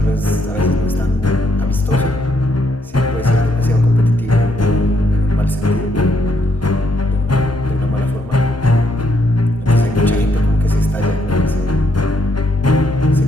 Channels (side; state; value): both; normal; correlation 0.74